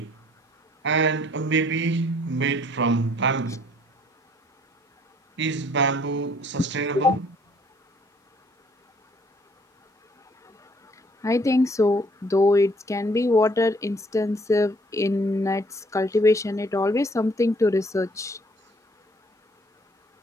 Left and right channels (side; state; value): both; normal; correlation 0.61